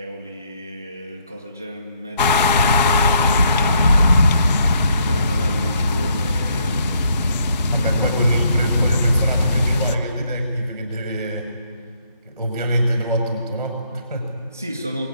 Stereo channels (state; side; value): inverted; both; correlation -0.70